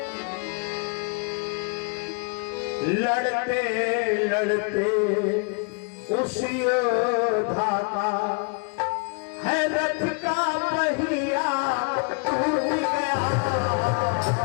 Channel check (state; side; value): quieter; right; 34.7 dB